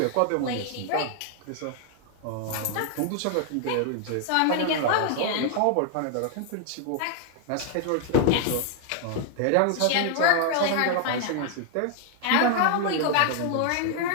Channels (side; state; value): both; different; correlation 0.00